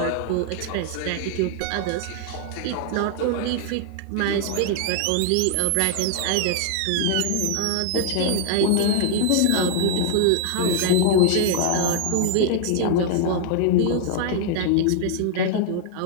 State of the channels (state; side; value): different; both; correlation 0.00